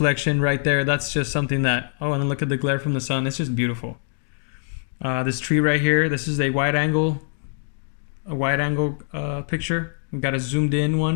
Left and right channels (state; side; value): silent; right; digital silence